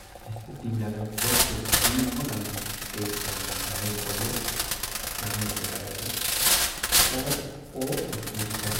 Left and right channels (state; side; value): identical; both; correlation 1.00